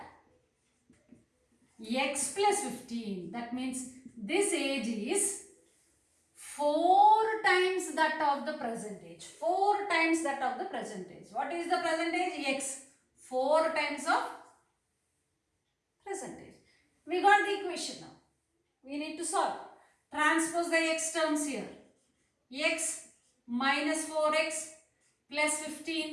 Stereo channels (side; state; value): both; identical; correlation 1.00